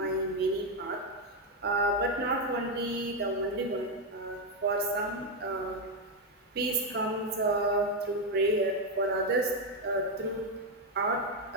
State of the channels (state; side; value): normal; both; correlation 0.04